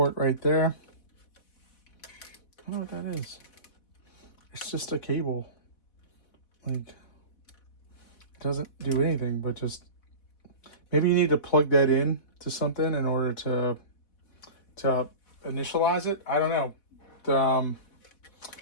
right there. I don't know what that is. It's just a cable. Like, it doesn't do anything, but just maybe you need to plug that in to something in order to initialize it. I don't know.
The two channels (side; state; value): right; late; 4.2 ms